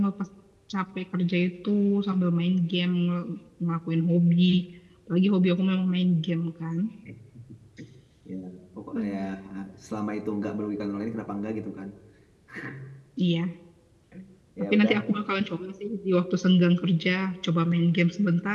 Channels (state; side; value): identical; both; correlation 1.00